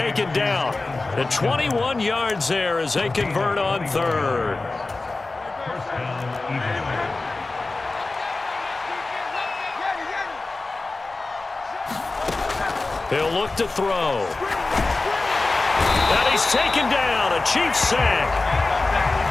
down. The 21 yards there as they convert on 3rd. He'll look to throw. And he's taken down. A Chiefs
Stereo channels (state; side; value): quieter; right; 3.4 dB